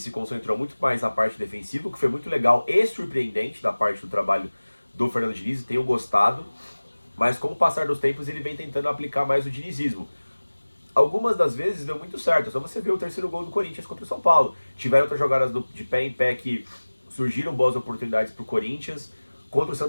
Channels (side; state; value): both; inverted; correlation -1.00